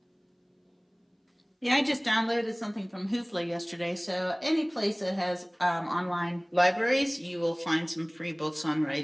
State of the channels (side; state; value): both; identical; correlation 1.00